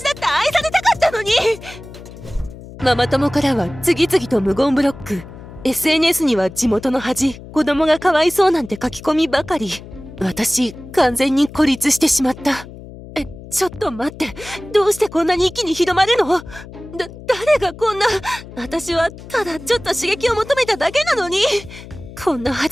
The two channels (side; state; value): left; noise; hum, 16 dB below the sound